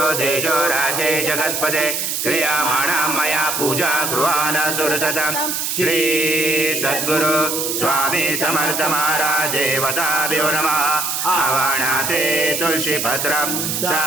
देशो राशे जगत्पदे क्रियमाणां मया पूजा गृहाण सुरसतं श्री सद्गुरु स्वामी समर्थ महाराज देवताभ्यो नमः। आवाहनाते तुलसीपत्रं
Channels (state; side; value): noise; right; hiss, 1 dB below the sound